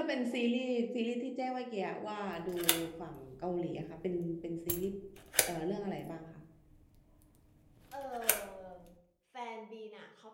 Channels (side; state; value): both; identical; correlation 1.00